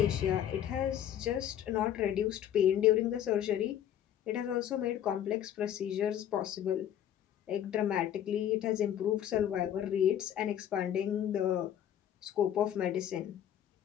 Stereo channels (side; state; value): right; quieter; 10.5 dB